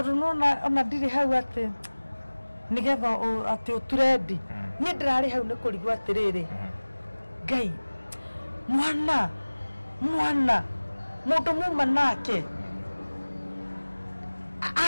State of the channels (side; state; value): both; inverted; correlation -1.00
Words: nona ona ndiri hau ati nigetha ati utrendi ni ndirari hau ni kurigwa atiriri ngai mwana mundu muma nake